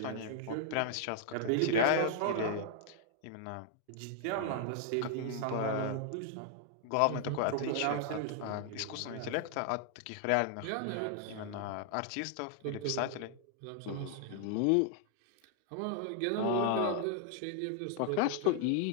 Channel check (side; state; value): both; different; correlation 0.00